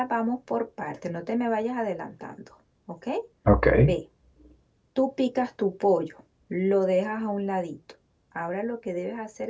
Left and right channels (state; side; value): identical; both; correlation 1.00